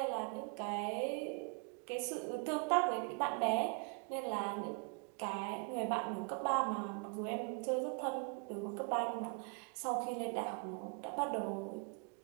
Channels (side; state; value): left; quieter; 36.2 dB